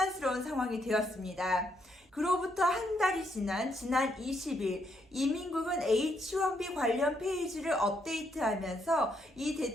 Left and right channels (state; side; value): normal; both; correlation 0.75